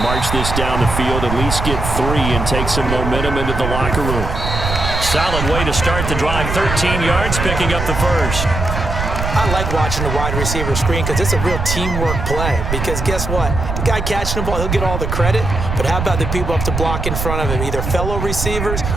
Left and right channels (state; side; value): noise; right; rumble, 3 dB below the sound